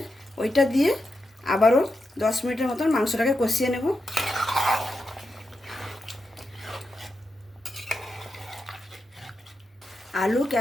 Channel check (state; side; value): normal; both; correlation 0.87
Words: ওইটা দিয়ে আবারও 10 মিনিটের মতন মাংসটাকে কষিয়ে নেব। আলু,